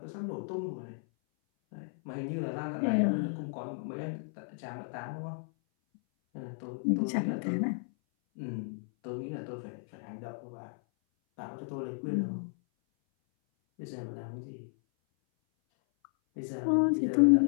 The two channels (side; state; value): right; silent; 56 dB below the other